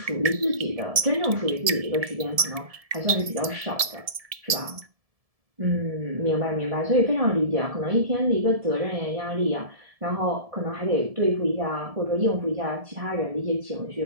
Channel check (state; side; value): late; left; 1.7 ms